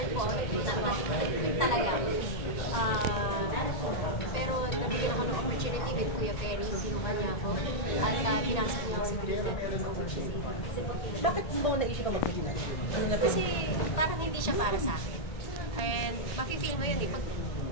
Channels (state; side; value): late; right; 1.8 ms